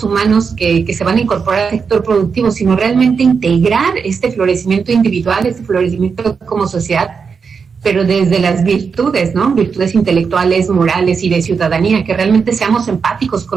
humanos que se van a incorporar al sector productivo, sino realmente integrar este florecimiento individual, este florecimiento como sociedad, pero desde las virtudes, ¿no? Virtudes intelectuales, morales y de ciudadanía, que realmente seamos empáticos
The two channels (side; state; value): left; quieter; 5.7 dB